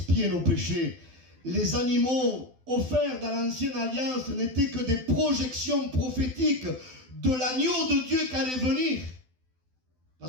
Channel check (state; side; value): late; left; 12 ms